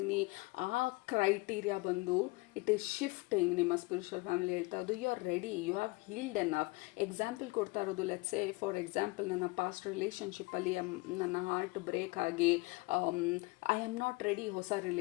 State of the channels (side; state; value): right; quieter; 24.5 dB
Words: ಆ ಕ್ರೈಟೀರಿಯಾ ಬಂದು ಇಟ್ ಈಸ್ ಶಿಫ್ಟಿಂಗ್. ನಿಮ್ಮ ಸ್ಪಿರಿಚುವಲ್ ಫ್ಯಾಮಿಲಿ ಹೇಳ್ತಾ ಇರೋದು you are ready, you have healed enough. Example ಕೊಡ್ತಾ ಇರೋದು, ಲೆಟ್ಸ್ ಸೇ ಫಾರ್ ಎಕ್ಸಾಂಪಲ್, ನನ್ನ ಪಾಸ್ಟ್ ರಿಲೇಷನ್ಶಿಪ್ಪಲ್ಲಿ ನನ್ನ ಹಾರ್ಟ್ ಬ್ರೇಕ್ ಆಗಿ ಐ ಆಮ್ ನಾಟ್ ರೆಡಿ ಹೊಸ